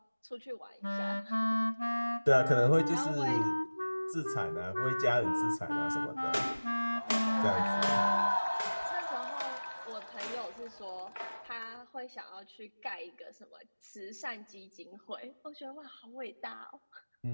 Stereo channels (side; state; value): both; inverted; correlation -1.00